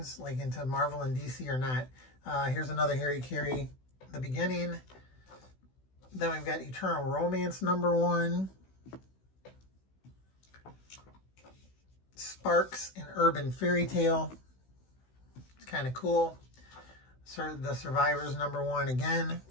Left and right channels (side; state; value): right; late; 16 ms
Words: like into Marvel and DC or not. Here's another Harry Carey, the beginning. Then we've got Eternal Romance number 1. Sparks, an Urban Fairy Tale. It's kind of cool. The Survivors number 1 again